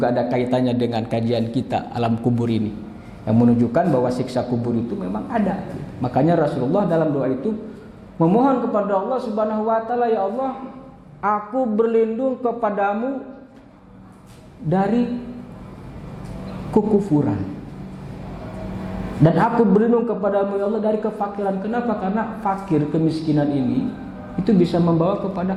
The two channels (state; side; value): identical; both; correlation 1.00